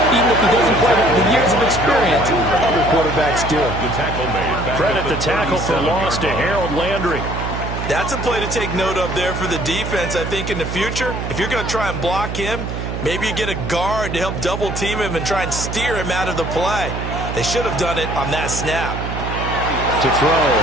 even if he doesn't quite have the years of experience other quarterbacks do. Credit the tackle for loss to Harold Landry. That's a play to take note of there for the defense. I think in the future, if you're going to try and block him, maybe you get a guard to help double team him and try and steer him out of the play. They should have done it on that snap. To throw,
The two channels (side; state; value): right; noise; hum, 5 dB below the sound